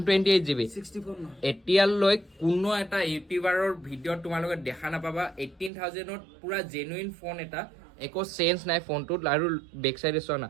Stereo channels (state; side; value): drops out; left; at 5.7 s